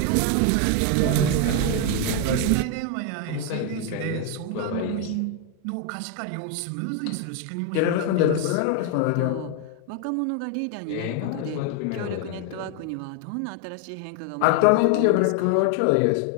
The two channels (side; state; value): both; different; correlation 0.01